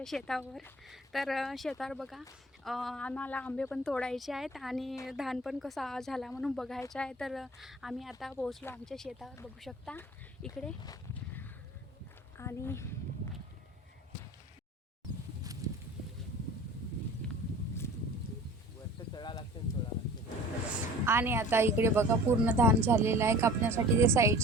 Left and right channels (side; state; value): both; normal; correlation 0.44